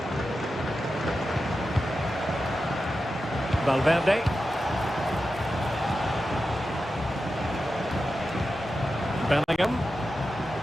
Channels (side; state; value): both; normal; correlation 0.91